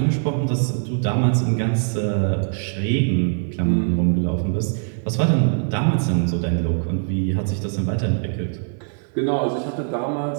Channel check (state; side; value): silent; left; 64 dB below the other